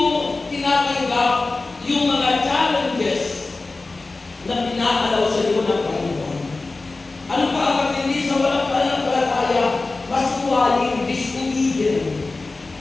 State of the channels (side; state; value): right; quieter; 3.5 dB